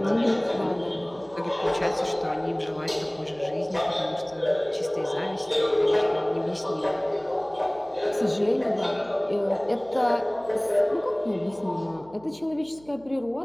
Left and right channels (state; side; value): noise; right; hum, 25 dB below the sound